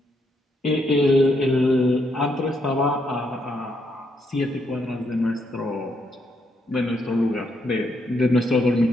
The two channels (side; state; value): both; normal; correlation 0.76